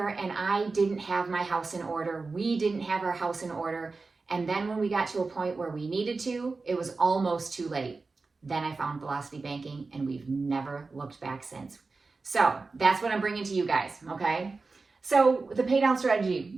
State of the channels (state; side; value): quieter; left; 4.0 dB